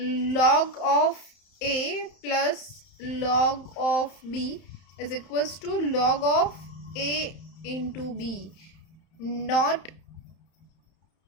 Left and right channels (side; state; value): right; late; 31 ms